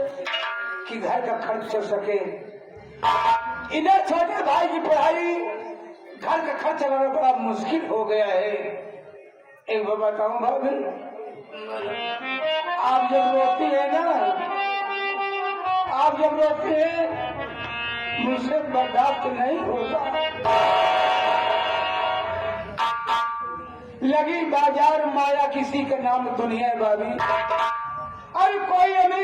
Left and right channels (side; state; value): both; identical; correlation 1.00